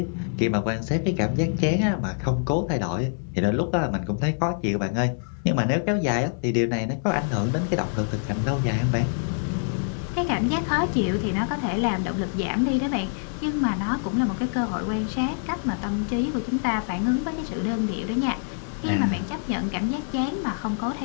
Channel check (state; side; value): silent; right; 61 dB below the other